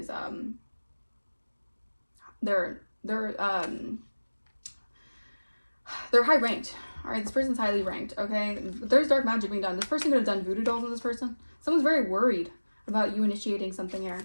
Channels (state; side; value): inverted; both; correlation -1.00